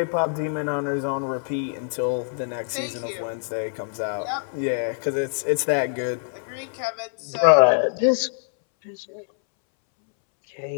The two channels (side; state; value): right; silent; 62 dB below the other